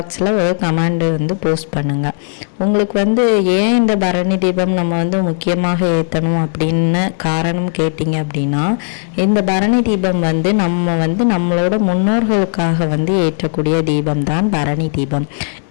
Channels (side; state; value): right; silent; 62 dB below the other